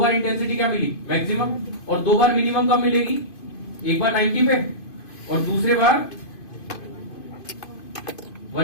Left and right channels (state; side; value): late; right; 2.5 ms